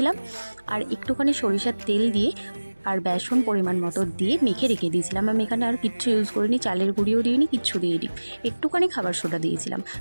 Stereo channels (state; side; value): inverted; both; correlation -1.00